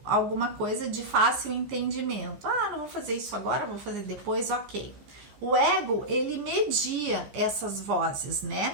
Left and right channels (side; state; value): left; late; 15 ms